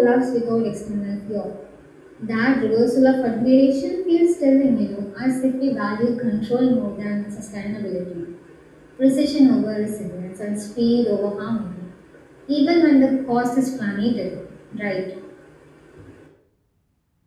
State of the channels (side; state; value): both; identical; correlation 1.00